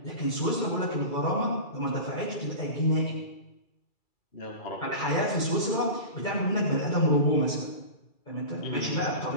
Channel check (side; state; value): right; late; 2.3 ms